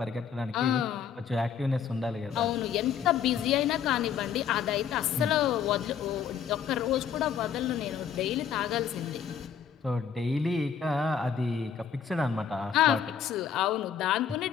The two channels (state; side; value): quieter; right; 7.7 dB